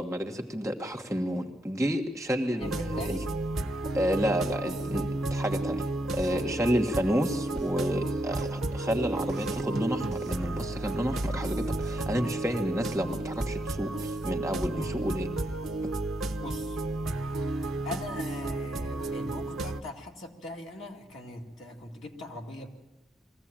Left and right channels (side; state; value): both; normal; correlation 0.80